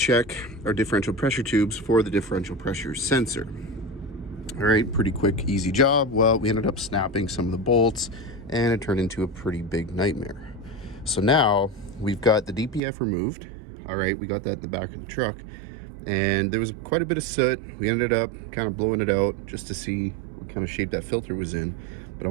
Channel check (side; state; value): left; drops out; at 12.8 s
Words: our differential pressure tubes for the differential pressure sensor. All right, pretty quick, easy job. Well, we ended up snapping some of the bolts and it turned into a pretty big nightmare. So now we've got the DPF removed. All right, we got that in the back of the truck, and there was quite a bit of soot. We ended up kind of blowing it out just to see what kind of shape that filter was in. But I